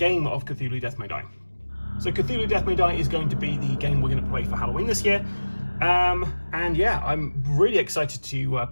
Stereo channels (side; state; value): both; inverted; correlation -1.00